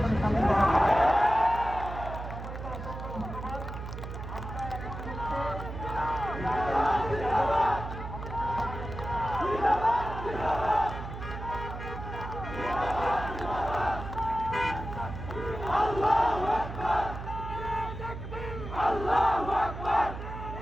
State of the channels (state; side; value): noise; right; hum, 8 dB below the sound